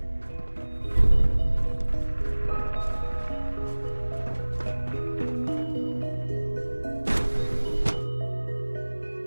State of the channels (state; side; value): inverted; both; correlation -1.00